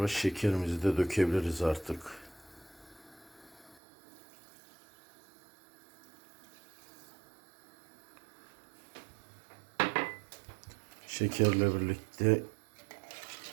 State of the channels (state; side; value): drops out; left; at 3.8 s